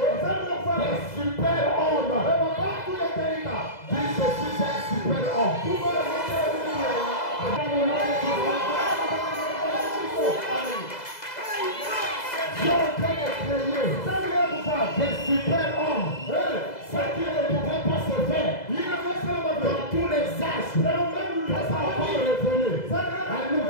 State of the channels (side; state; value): right; late; 2.0 ms